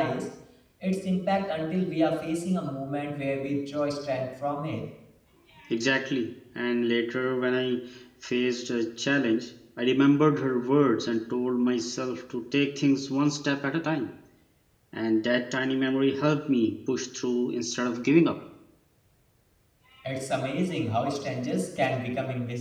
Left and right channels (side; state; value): both; identical; correlation 1.00